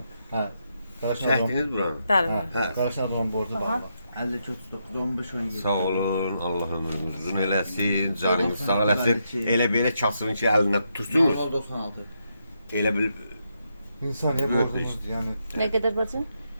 Ha. Çəkdiniz buranı. Bəli, Ha. bəli. Ha. Qarşıdan borcu var. 50 çok tutup. 15-17. Sağ olun, Allah ömrünüzü uzun eləsin, canınız sağ eləsin. Elə belə kasını ki əlinə tutursunuz. 96. Elə bil İnsaniye Böyle borcumuz yani Nə qədər bacım?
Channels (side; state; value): both; inverted; correlation -0.81